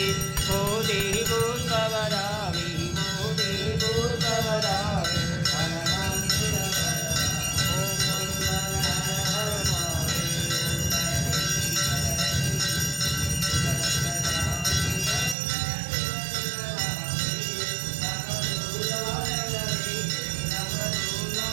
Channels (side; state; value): left; drops out; at 15.4 s